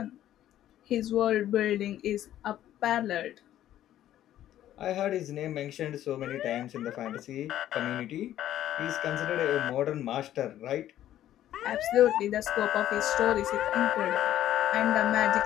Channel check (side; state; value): right; quieter; 12.3 dB